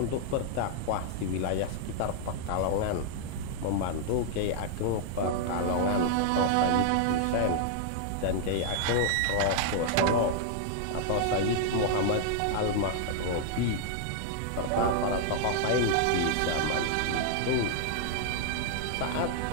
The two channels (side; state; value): both; different; correlation -0.01